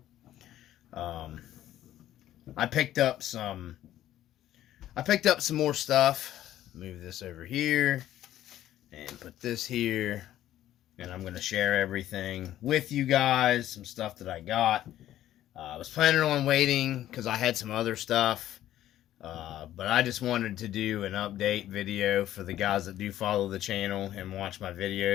I picked up some more stuff. Move this over here and put this here, and I'm gonna share everything with you guys. Some stuff that I got. I was planning on waiting because I had some other stuff, but I just wanted to do an update video for the guys that do follow the channel and watch my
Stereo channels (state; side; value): quieter; right; 12.8 dB